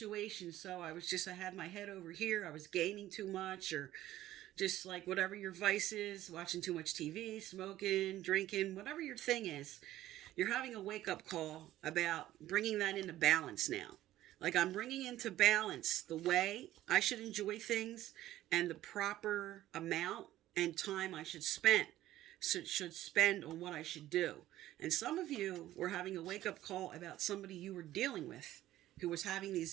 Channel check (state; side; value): quieter; left; 14.3 dB